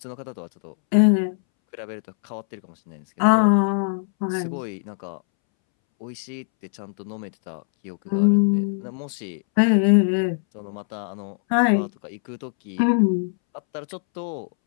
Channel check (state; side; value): silent; right; 64 dB below the other